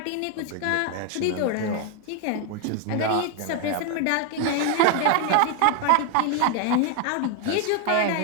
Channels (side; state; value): both; different; correlation 0.01